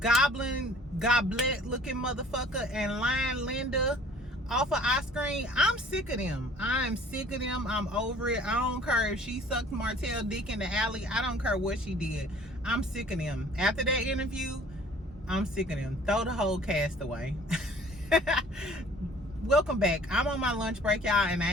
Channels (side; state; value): both; normal; correlation 0.52